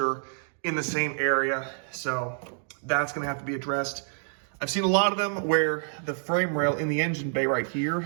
in the same area. So that's gonna have to be addressed. I've seen a lot of them where the frame rail in the engine bay right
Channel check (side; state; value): left; silent; digital silence